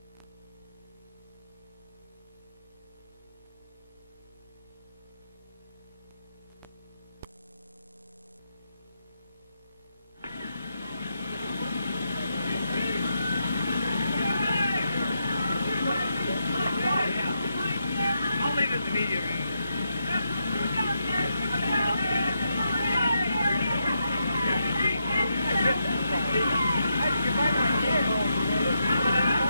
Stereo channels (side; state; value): both; inverted; correlation -0.82